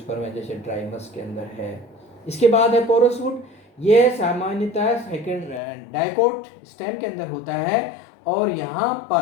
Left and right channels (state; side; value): drops out; right; at 5.6 s